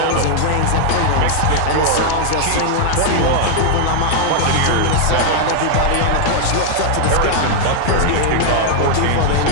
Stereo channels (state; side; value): different; both; correlation -0.01